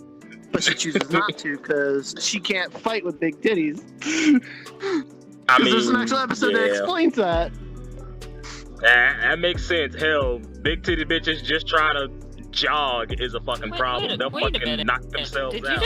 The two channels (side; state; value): both; identical; correlation 1.00